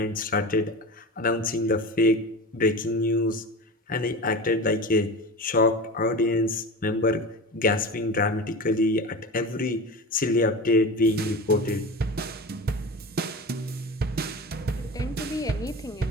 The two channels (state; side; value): normal; both; correlation 0.30